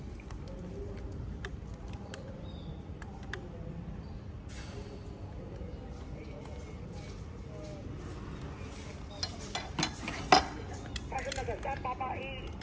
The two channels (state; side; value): identical; both; correlation 1.00